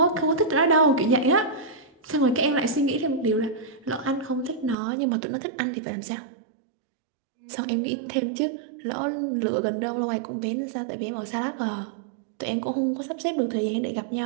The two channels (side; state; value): left; drops out; at 4.8 s